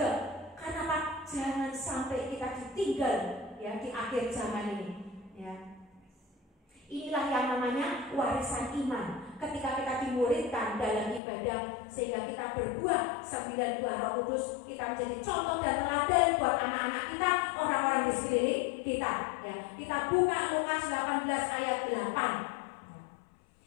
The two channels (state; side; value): drops out; right; at 11.2 s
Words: Karena apa? Jangan sampai kita ditinggal, ya, di akhir zaman ini, ya. Inilah yang namanya warisan iman. Ketika kita dimuridkan dalam ibadah sehingga kita berbuah 9 buah Roh Kudus, kita menjadi contoh dan teladan buat anak-anak kita, orang-orang di sekeliling kita, ya. Kita buka Lukas 18 ayat